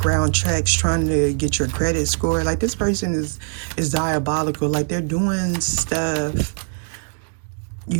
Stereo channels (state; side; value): silent; left; digital silence